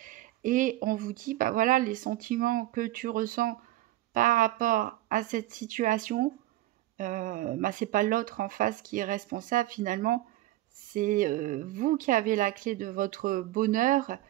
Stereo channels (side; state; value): left; quieter; 16.1 dB